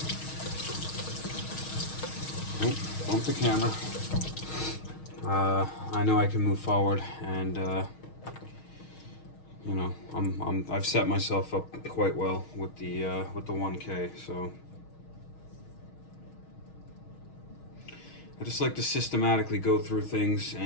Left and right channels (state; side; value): late; right; 6.4 ms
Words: bump the camera, I know I can move forward, and you know, I've set myself up quite well with the 1K. So I just like to systematically go through things,